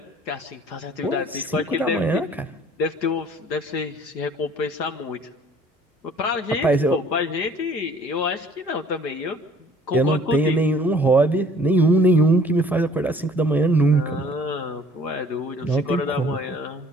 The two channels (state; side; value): normal; both; correlation 0.54